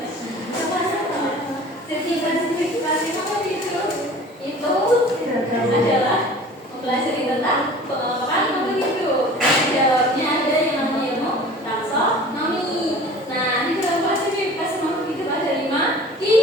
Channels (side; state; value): both; normal; correlation 0.43